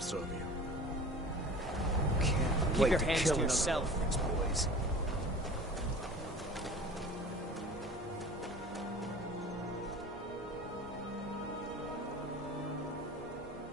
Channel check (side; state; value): both; normal; correlation 0.41